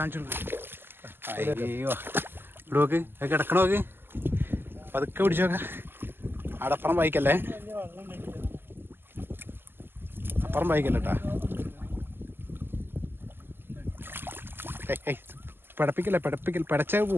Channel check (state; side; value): late; left; 0.10 ms